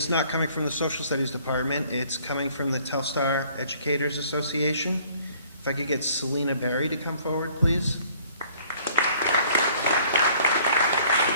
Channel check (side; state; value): both; inverted; correlation -0.57